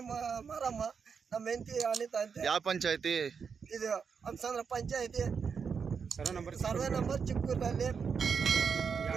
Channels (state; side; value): quieter; left; 6.1 dB